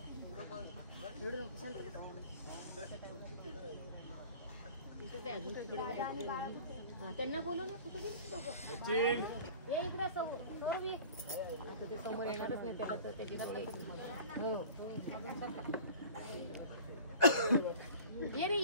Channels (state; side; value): inverted; both; correlation -0.43